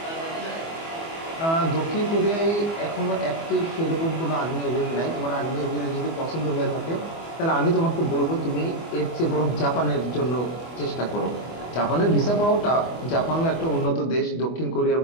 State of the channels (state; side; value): late; right; 24 ms